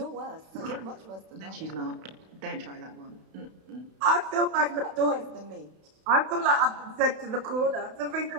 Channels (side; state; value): left; late; 31 ms